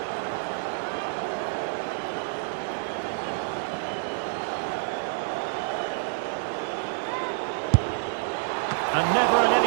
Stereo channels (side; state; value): left; silent; digital silence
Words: And never in